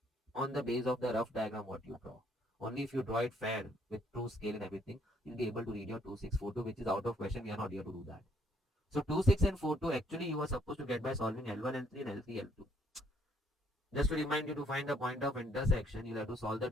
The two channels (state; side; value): normal; both; correlation 0.67